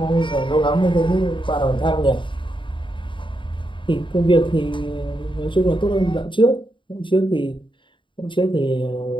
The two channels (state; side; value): late; right; 0.24 ms